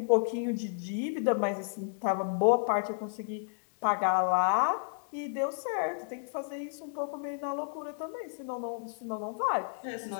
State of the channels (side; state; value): right; silent; digital silence